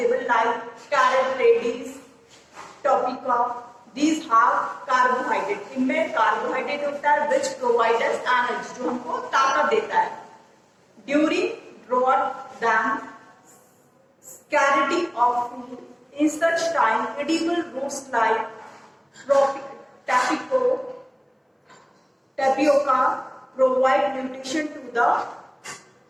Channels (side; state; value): both; identical; correlation 1.00